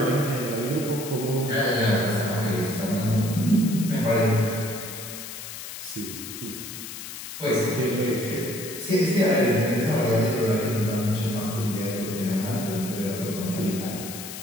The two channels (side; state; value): left; noise; hiss, 10 dB below the sound